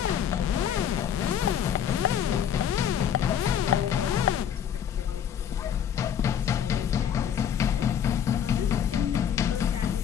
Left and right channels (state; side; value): quieter; right; 8.9 dB